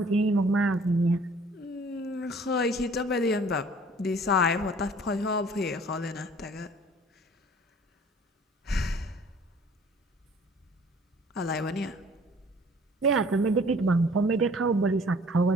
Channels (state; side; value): normal; both; correlation 0.53